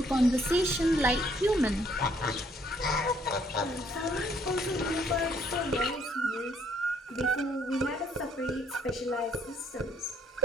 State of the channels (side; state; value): both; normal; correlation 0.67